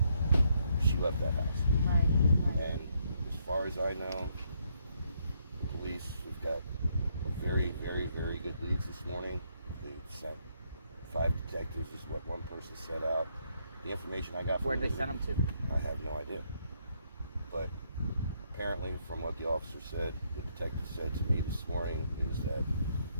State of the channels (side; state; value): both; inverted; correlation -0.73